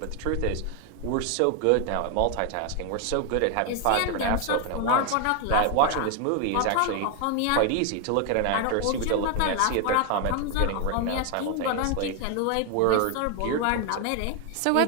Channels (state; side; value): different; both; correlation 0.01